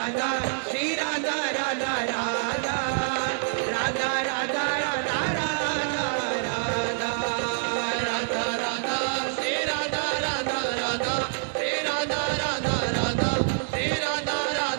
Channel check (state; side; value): silent; left; 57 dB below the other